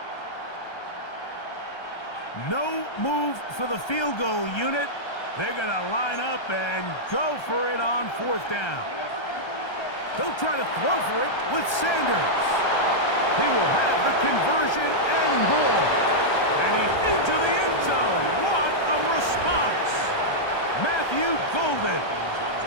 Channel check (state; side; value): late; right; 1.3 ms